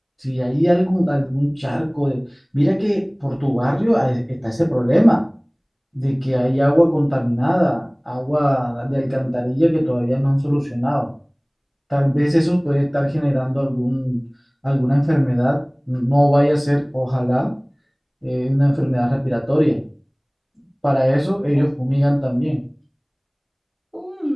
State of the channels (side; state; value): both; identical; correlation 1.00